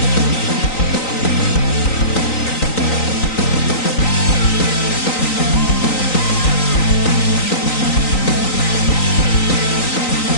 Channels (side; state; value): right; late; 3.9 ms